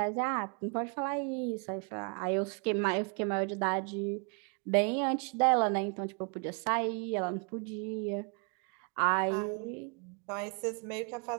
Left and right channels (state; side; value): quieter; left; 37.5 dB